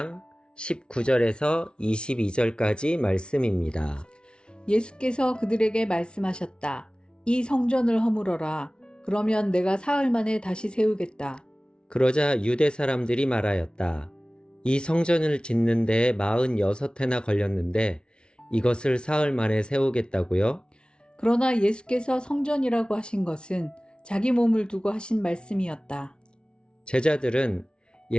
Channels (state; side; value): late; right; 0.056 ms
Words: 19절에서 22절까지 말씀입니다. 예수께서 그들에게 말씀하셨다. 이 성전을 허물어라. 그러면 내가 사흘 만에 다시 세우겠다. 그러자 유대 사람들이 말하였다. 이 성전을 짓는 데에 46해나 걸렸는데 이것을 사흘 만에 세우겠다고요? 그러나 예수께서 성전이라고 하신 것은 자기 몸을 두고 하신 말씀이었다. 제자들은